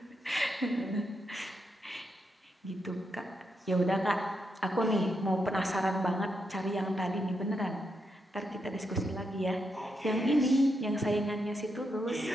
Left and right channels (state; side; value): normal; both; correlation 0.82